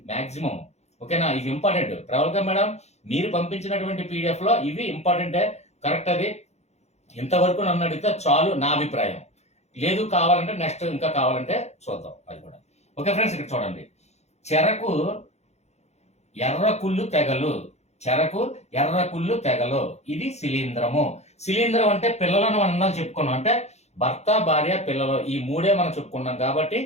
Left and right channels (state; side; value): late; right; 0.32 ms